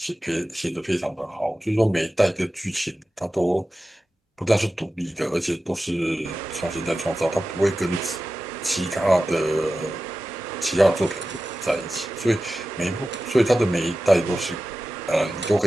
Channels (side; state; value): both; normal; correlation 0.94